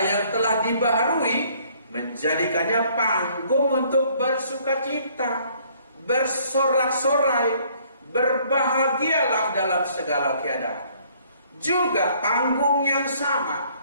yang telah dibaharui menjadikannya panggung untuk bersukacita, bersorak-sorai, berbahagialah dalam segala keadaan. Juga panggung yang sama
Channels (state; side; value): inverted; both; correlation -0.62